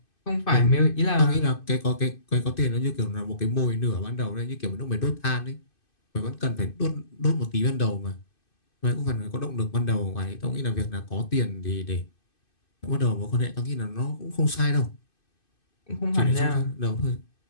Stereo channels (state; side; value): late; right; 2.5 ms